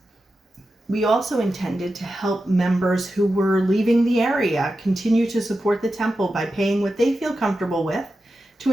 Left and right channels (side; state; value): both; normal; correlation 0.91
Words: We also intended to help members who were leaving the area continue to support the temple by paying what they feel comfortable with to